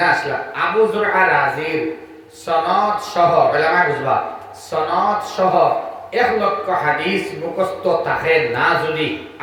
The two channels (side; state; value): both; identical; correlation 1.00